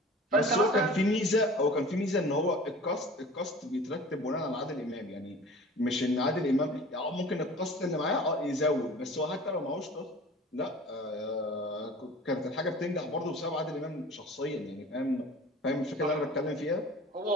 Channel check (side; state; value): both; normal; correlation 0.42